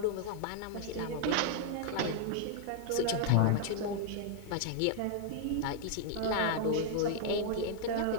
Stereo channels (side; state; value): both; different; correlation 0.00